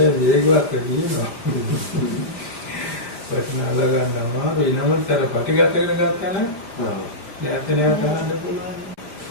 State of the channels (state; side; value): late; right; 5.0 ms